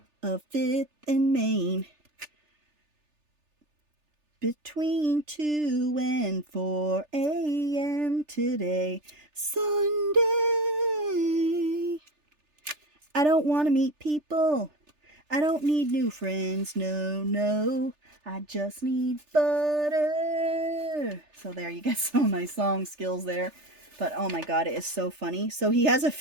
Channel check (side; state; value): left; late; 3.4 ms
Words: of 5th and Main. Between 2 and 4 a.m. today, Sunday. I don't want to meet people. I don't need new friends, no, no. I just need butter. So there, you get some of my song skills there. But oh my god, it is so funny. So he has a